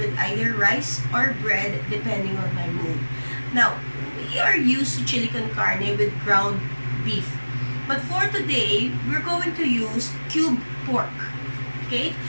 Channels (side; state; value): both; inverted; correlation -1.00